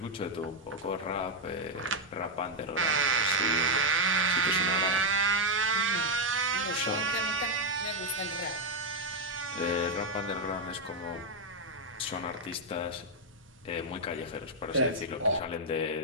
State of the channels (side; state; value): both; normal; correlation 0.01